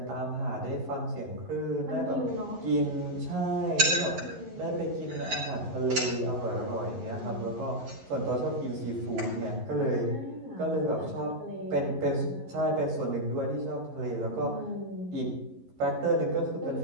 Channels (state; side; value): late; left; 11 ms